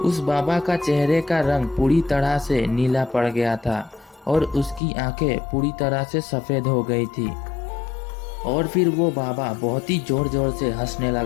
उस बाबा का चेहरे का रंग पूरी तरह से नीला पड़ गया था और उसकी आंखें पूरी तरह से सफ़ेद हो गई थी। और फिर वो बाबा बहुत ही जोर जोर से हंसने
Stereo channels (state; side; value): drops out; right; at 4.8 s